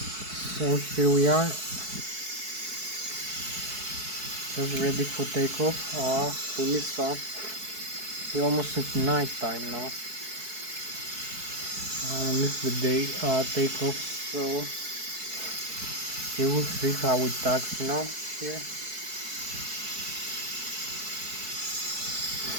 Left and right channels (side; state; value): left; late; 4.6 ms